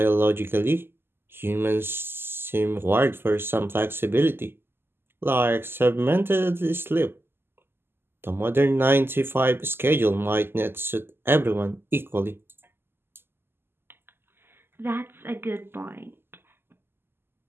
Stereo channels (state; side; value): late; left; 0.11 ms